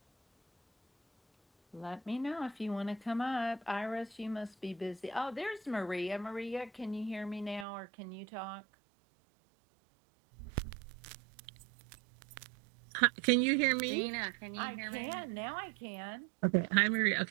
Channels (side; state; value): left; drops out; at 7.7 s